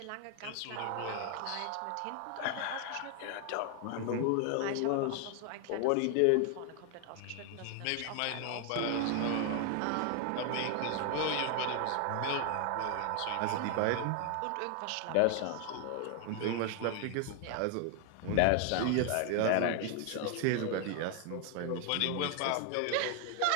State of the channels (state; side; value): different; both; correlation 0.00